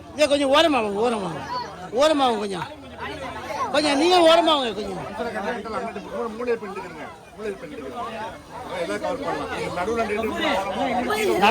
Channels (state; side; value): identical; both; correlation 1.00